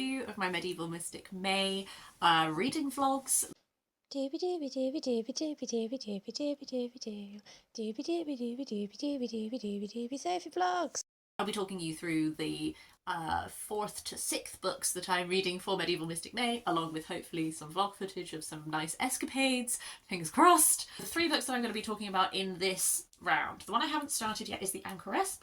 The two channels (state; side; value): identical; both; correlation 1.00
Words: of my Medieval Mystic May reading vlogs. Dooby dooby dooby dooby dooby dooby dooby dooby dooby doo. Dooby dooby dooby dooby dooby dooby dooby dooby Sophie vlogs. I'll be talking you through the 4th to 6th books that I'm reading for Medieval Mystic May, along with hopefully some vlog footage of some nice escapades, fingers crossed. The 3 books that I'm going to be talking about in this round. The one I haven't started yet is The Anchoress